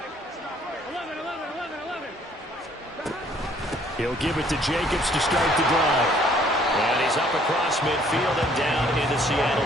He'll give it to Jacobs to start the drive. And he's up across midfield and down into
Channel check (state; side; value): normal; both; correlation 0.61